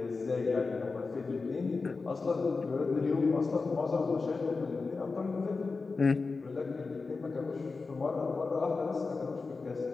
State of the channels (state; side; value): quieter; right; 4.2 dB